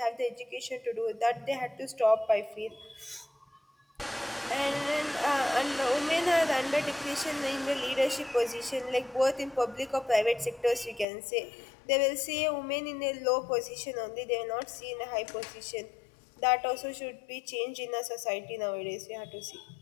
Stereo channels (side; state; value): right; drops out; at 11.1 s